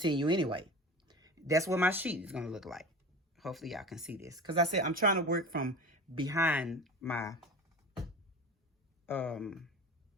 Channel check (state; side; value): normal; both; correlation 0.33